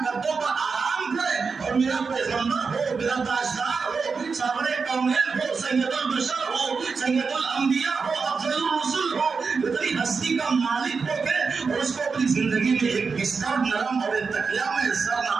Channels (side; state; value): left; quieter; 5.0 dB